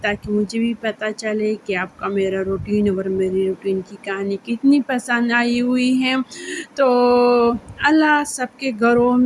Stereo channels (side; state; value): both; identical; correlation 1.00